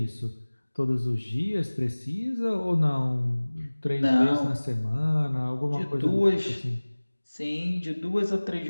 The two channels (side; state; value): both; inverted; correlation -1.00